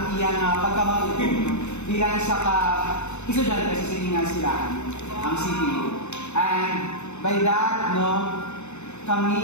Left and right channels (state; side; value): late; right; 0.82 ms